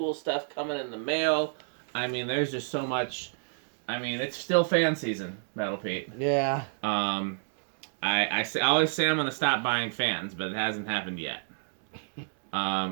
stuff coming in the mail. I mean, there's just so much. I mean, it's still fan season, Metal Pete. Yeah. I always say I'm gonna stop buying fans, but it hasn't happened yet.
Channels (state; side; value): silent; left; digital silence